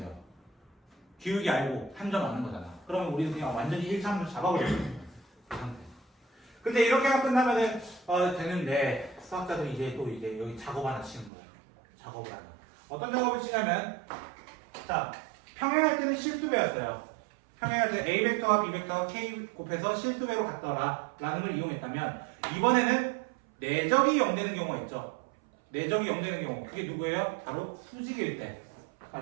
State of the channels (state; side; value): drops out; left; at 11.3 s